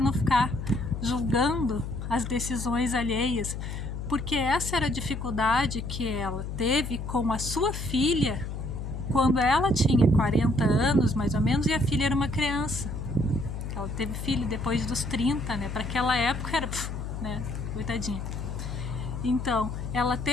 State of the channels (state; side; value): noise; left; hum, 6 dB below the sound